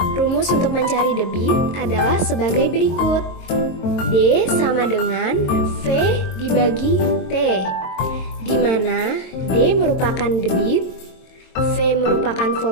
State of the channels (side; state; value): right; late; 22 ms